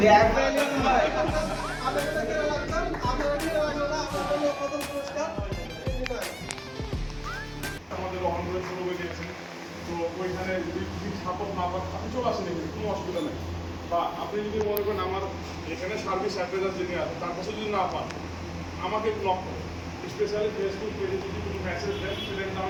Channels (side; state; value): both; identical; correlation 1.00